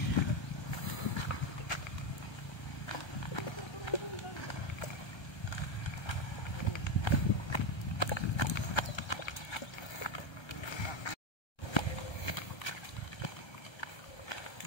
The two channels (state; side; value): late; right; 1.3 ms